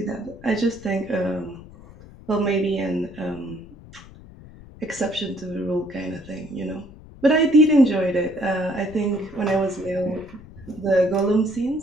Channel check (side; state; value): left; noise; rumble, 19 dB below the sound